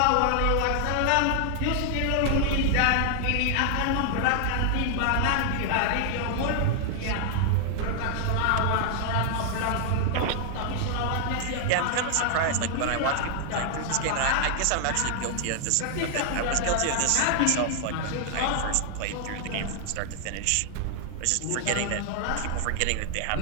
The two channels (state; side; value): different; both; correlation 0.00